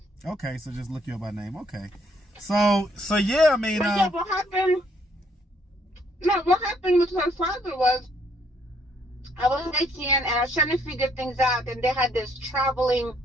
Okay, so just look you up by name. Okay, so yeah, I mean, but yeah, what happened? No, what happened with her father was, I was 18 and I was trying to figure things out, and they had this traveling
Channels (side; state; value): both; normal; correlation 0.68